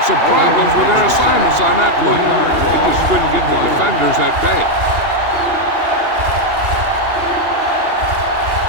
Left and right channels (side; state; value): left; late; 2.8 ms